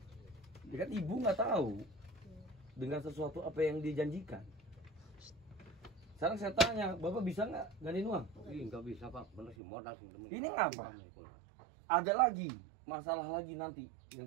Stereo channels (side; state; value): left; drops out; at 9.6 s